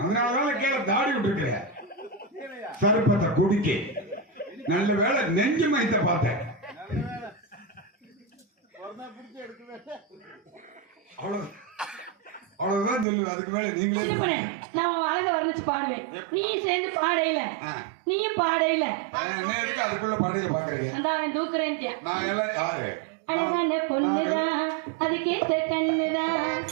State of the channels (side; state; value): left; drops out; at 13.1 s